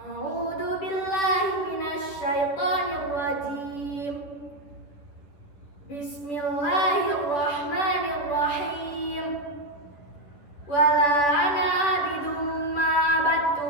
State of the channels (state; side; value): late; right; 10 ms